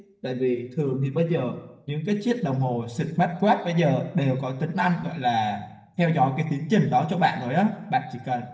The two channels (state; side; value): identical; both; correlation 1.00